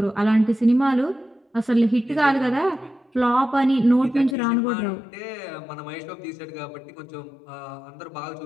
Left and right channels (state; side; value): drops out; right; at 4.4 s